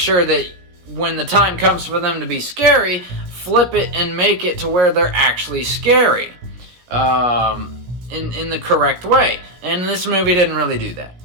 that when the time comes for them to be scary, flip it and make it to where they're actually scary. In the correct way. And this movie didn't really do that.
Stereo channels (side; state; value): left; late; 16 ms